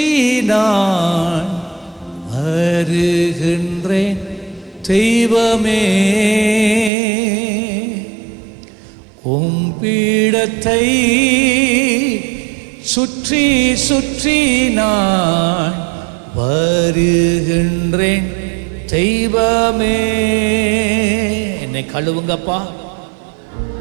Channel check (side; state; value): left; drops out; at 6.9 s